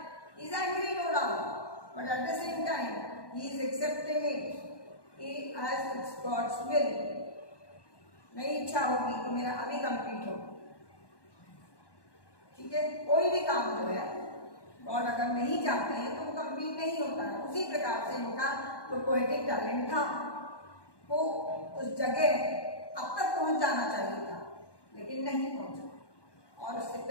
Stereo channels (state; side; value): late; right; 1.1 ms